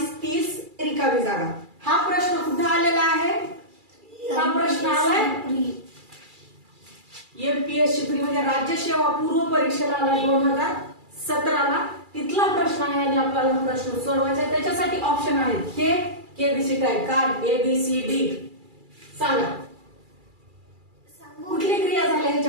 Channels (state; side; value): late; left; 2.3 ms